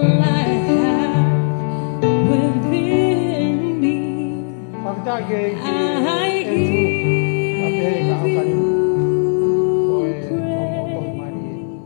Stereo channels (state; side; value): silent; right; digital silence